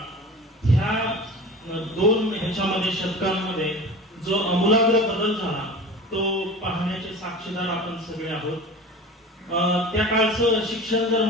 ह्या दोन ह्याच्यामध्ये शतकांमध्ये जो आमूलाग्र बदल झाला तो पाहण्याचे साक्षीदार आपण सगळे आहोत. त्या काळचं शिक्षण जर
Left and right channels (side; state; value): both; normal; correlation 0.36